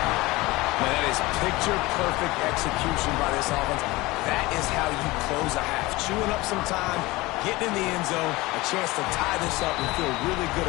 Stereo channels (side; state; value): right; quieter; 20.9 dB